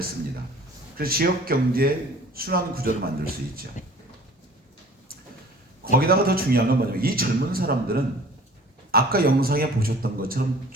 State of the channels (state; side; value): normal; both; correlation 0.48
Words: 씁니다. 그래서 지역 경제 순환 구조를 만들 수 있죠. 거기다가 더 중요한 건 뭐냐면 이 젊은 사람들은 아까 영상에 보셨던 것처럼